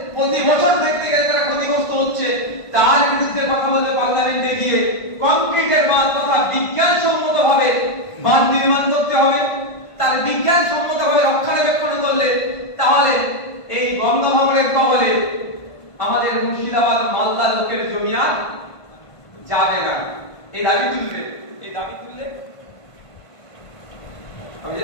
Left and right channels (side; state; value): right; late; 1.5 ms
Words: প্রতি বছর দেখতে গেলে তারা ক্ষতিগ্রস্ত হচ্ছে, তার বিরুদ্ধে কথা বলতে পার্লামেন্টে গিয়ে কংক্রিটের বাঁধ তথা বিজ্ঞানসম্মত ভাবে বাঁধ নির্মাণ করতে হবে। তার বিজ্ঞানসম্মত ভাবে রক্ষণাবেক্ষণ করলে তাহলে এই গঙ্গা ভাঙনের কবলে আমাদের মুর্শিদাবাদ, মালদা লোকের জমি আর যাবে না। এই দাবি তুললে